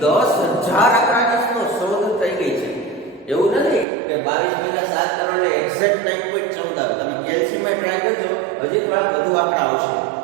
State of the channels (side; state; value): left; drops out; at 3.9 s